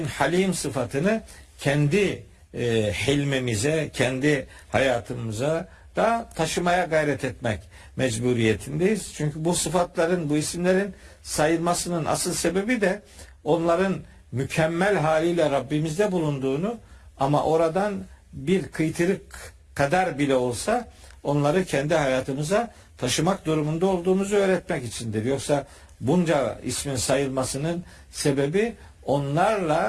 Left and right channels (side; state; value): both; identical; correlation 1.00